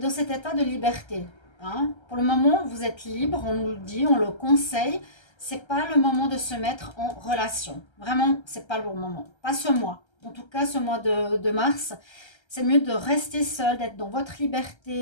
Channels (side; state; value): right; late; 1.3 ms